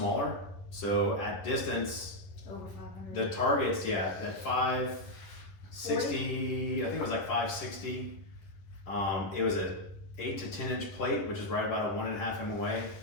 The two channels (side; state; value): right; late; 10 ms